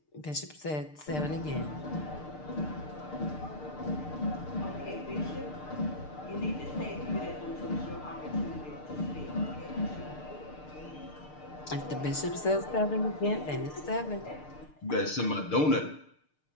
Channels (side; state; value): right; late; 6.6 ms